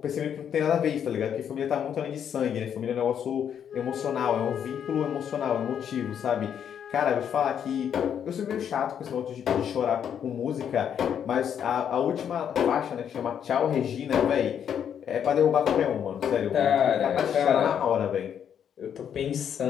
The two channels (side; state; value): right; quieter; 8.6 dB